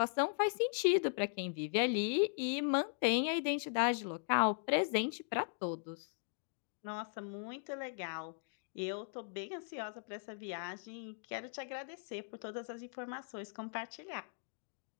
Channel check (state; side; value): silent; right; digital silence